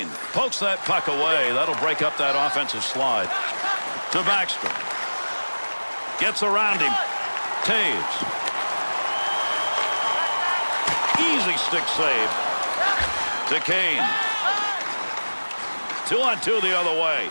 Pokes that puck away. That'll break up that offensive slide. To Backstrom. Gets around him. Taves. Easy stick save. To Kane. 2-on-2 the other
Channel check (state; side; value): inverted; both; correlation -1.00